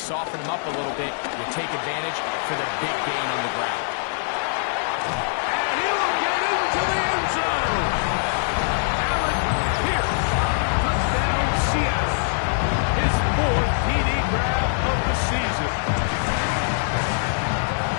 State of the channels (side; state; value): right; silent; digital silence